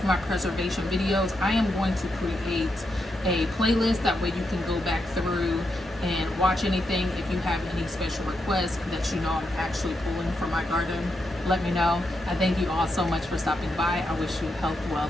my preservation videos, I am going to create a playlist. That way you can go back through and watch anything. If you have any special requests that you know I'm actually pulling from my garden, let me know. I thank you all so much for stopping by. I wish you health,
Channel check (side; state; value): both; normal; correlation 0.83